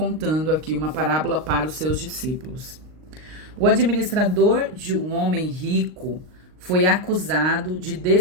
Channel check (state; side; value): late; left; 39 ms